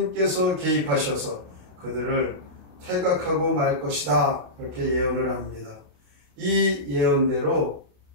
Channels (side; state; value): left; late; 28 ms